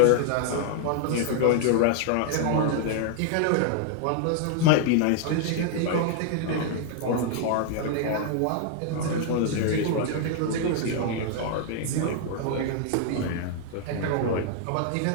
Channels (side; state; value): both; different; correlation 0.00